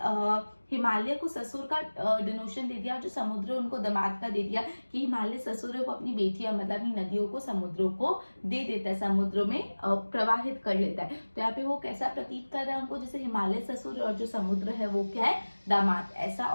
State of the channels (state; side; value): inverted; both; correlation -1.00